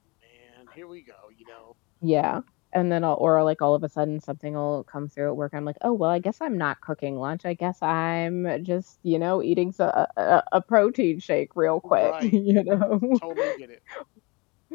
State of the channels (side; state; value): right; quieter; 27.4 dB